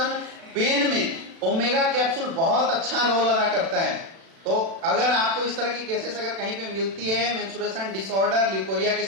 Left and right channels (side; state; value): left; late; 36 ms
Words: पेन में ओमेगा कैप्सूल बहुत अच्छा रोल अदा करता है। तो अगर आपको इस तरह की केसेस अगर कहीं पे मिलती है, मेंस्ट्रुएशन डिसऑर्डर, ल्यूकोरिया की